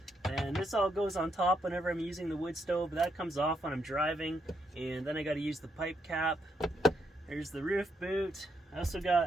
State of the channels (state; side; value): normal; both; correlation 0.78